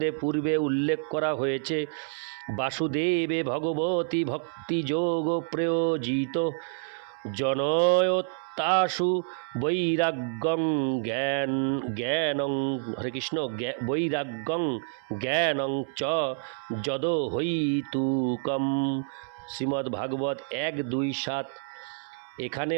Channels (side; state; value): left; silent; 59 dB below the other